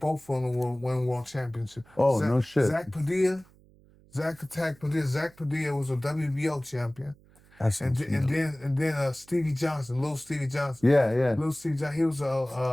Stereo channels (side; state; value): right; noise; hum, 28 dB below the sound